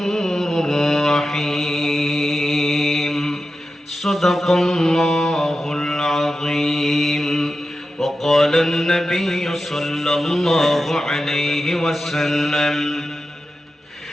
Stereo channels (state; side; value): normal; both; correlation 0.92